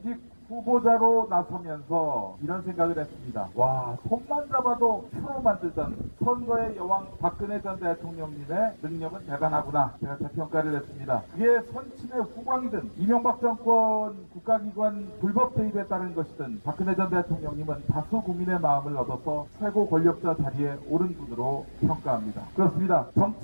후보자로 나서면서 이런 생각을 했습니다. 와, 손만 잡아도 표로 만들던 선거의 여왕 박근혜 전 대통령님의 능력은 대단하구나. 제가 재평가를 했습니다. 그게 선친의 후광이든 이명박 정권 국가기관 불법 개입에 따른 것이든 박근혜 전 대통령님은 다수 국민의 마음을 얻어서 최고 권력자 자리에 오른 분으로 평가합니다. 그렇습니다.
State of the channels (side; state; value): both; inverted; correlation -1.00